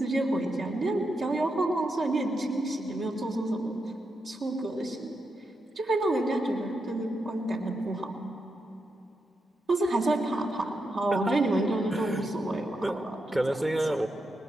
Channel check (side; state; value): both; normal; correlation 0.85